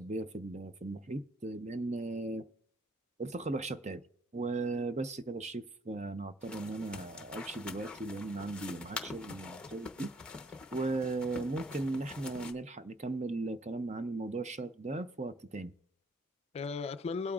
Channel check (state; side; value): normal; both; correlation 0.63